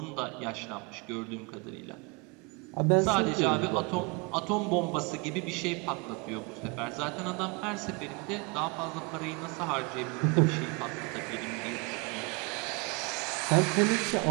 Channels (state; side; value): quieter; left; 29.5 dB